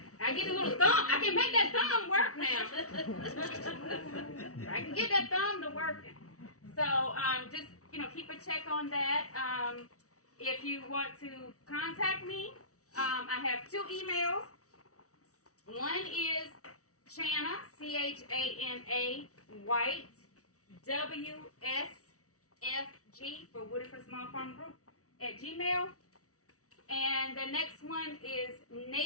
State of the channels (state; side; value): late; right; 0.65 ms